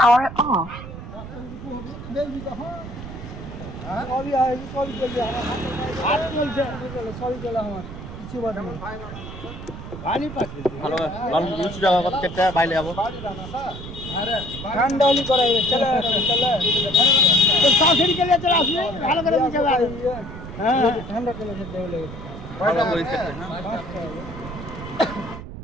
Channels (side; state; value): right; noise; rumble, 11 dB below the sound